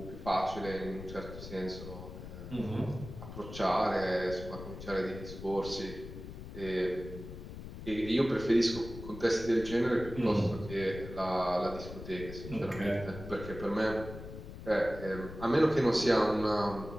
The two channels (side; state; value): left; noise; rumble, 11 dB below the sound